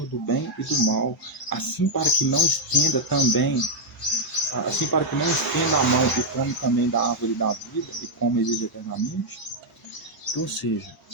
do bem e do mal, assim para que não estenda a mão e come também da árvore da vida e come e vive eternamente. Então, ou seja,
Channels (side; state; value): both; normal; correlation -0.02